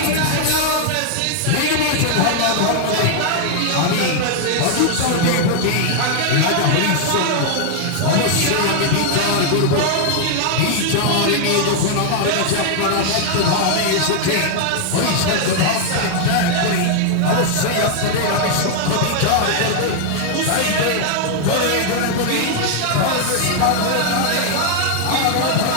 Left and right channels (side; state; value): both; different; correlation 0.00